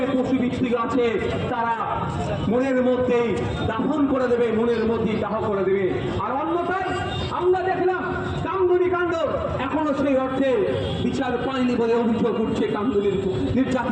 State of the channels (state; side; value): identical; both; correlation 1.00